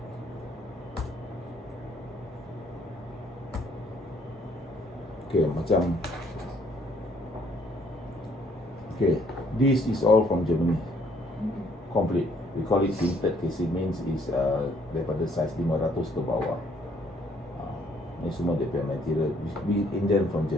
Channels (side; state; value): both; normal; correlation 0.64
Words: Okay, macam okay, this is all from Germany. Complete. We call it tinted casing, means is daripada size 500 ke bawah. Ni semua dia punya material. We Indian from